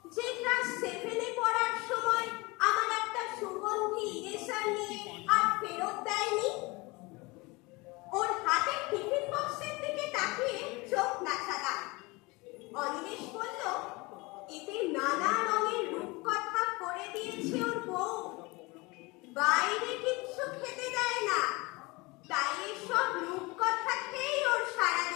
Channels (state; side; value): quieter; right; 24.7 dB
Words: যে ক্লাস 7-এ পড়ার সময় আমার একটা সুগন্ধি ইরেজার নিয়ে আর ফেরত দেয়নি? ওর হাতের টিফিন বক্সের দিকে তাকিয়ে চোখ নাচালাম। অনিমেষ বলল এতে নানা রঙের রূপকথা করে দিয়েছে ওর বউ। বাইরে কিচ্ছু খেতে দেয় না, তাই এসব রূপকথা খেয়েই ওর